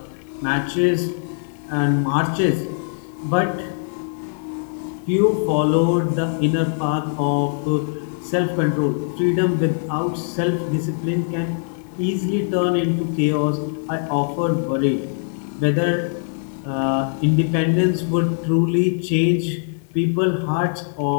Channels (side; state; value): right; silent; digital silence